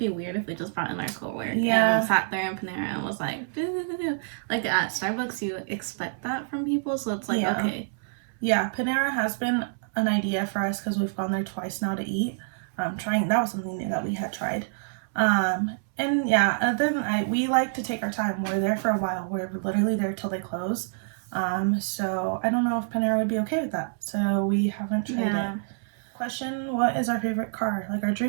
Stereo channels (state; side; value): silent; left; 60 dB below the other